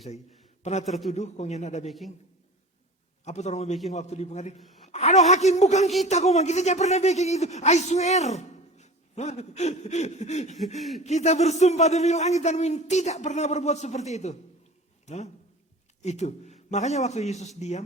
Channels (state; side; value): normal; both; correlation 0.38